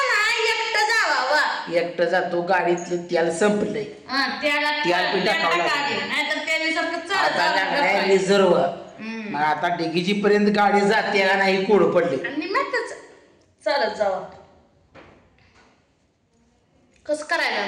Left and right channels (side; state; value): both; identical; correlation 1.00